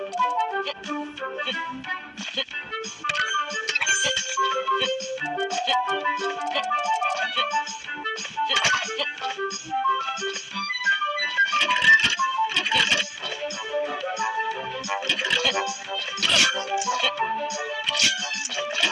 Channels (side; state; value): both; identical; correlation 1.00